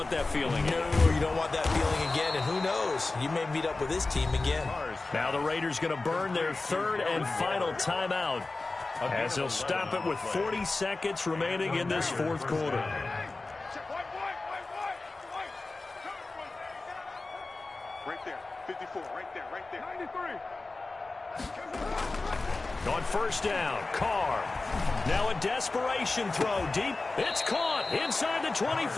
that feeling. No, you don't want that feeling again. And who knows? You may meet up with this team again. Now the Raiders going to burn their third and final timeout as they'll stop it with 40 seconds remaining in this fourth quarter. Right there, 54, right there, 93. On first down, Carr. Now a desperation throw deep. It's caught inside the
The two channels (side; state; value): right; quieter; 3.4 dB